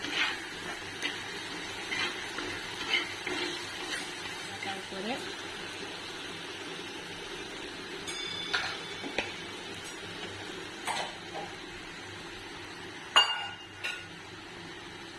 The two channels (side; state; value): both; identical; correlation 1.00